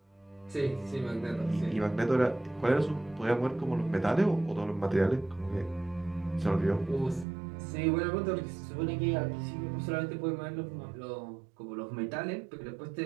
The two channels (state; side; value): drops out; left; at 7.2 s